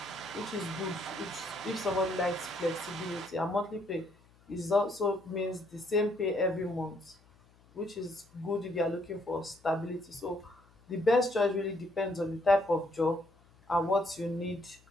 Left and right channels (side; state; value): left; noise; hum, 29 dB below the sound